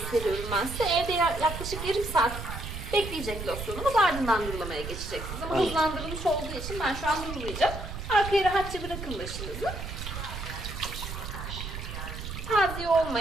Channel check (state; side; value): noise; right; rumble, 8 dB below the sound